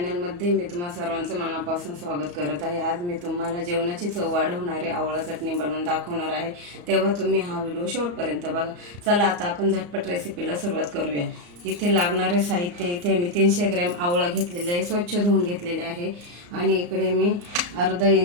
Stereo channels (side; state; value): left; late; 34 ms